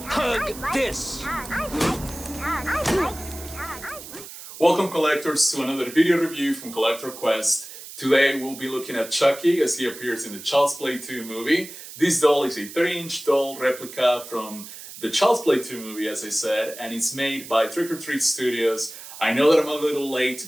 Hug I'd like this. To be hugged. I'd like to be hugged. I'd like to be hugged. Welcome collectors to another video review from Collector Quest. Today we'll be looking at Chucky as he appears in the Child's Play 2 movie. This doll is a 30-inch doll replica from the Child's Play 2 movie, as I said, and it's made by Trick or Treat Studios. I know that I'm a little late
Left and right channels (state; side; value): noise; right; hiss, 14 dB below the sound